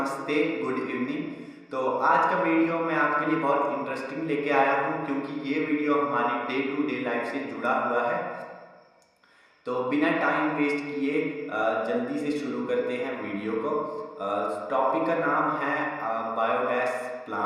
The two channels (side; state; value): both; identical; correlation 1.00